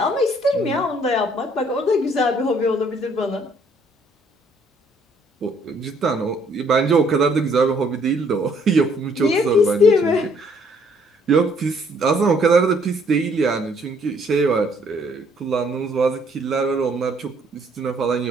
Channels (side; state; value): both; normal; correlation 0.64